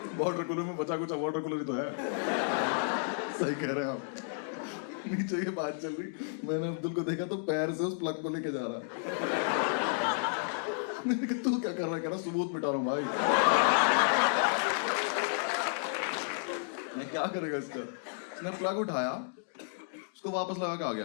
वाटर कूलर में बचा कुछ वाटर कूलर ही तो है। सही कह रहे हैं आप। नीचे ये बात चल रही, मैंने अब्दुल को देखा तो पैर से उस प्लग को लेके जा रहा। मैंने कहा तू क्या कर रहा है? कह रहा सबूत मिटा रहा हूं भाई। मैं क्या करेगा इसका? उसने प्लग उठाया, उसको वापस लगा के आ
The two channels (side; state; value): right; silent; digital silence